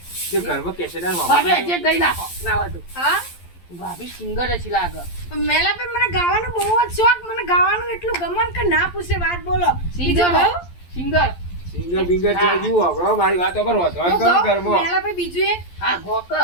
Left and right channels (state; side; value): late; right; 11 ms